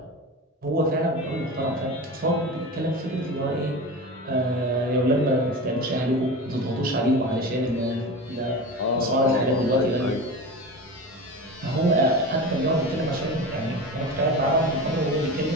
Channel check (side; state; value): both; normal; correlation 0.29